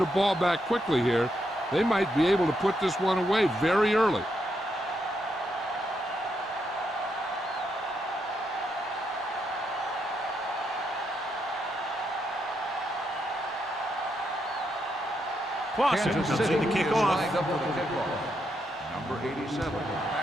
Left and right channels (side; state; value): both; normal; correlation 0.80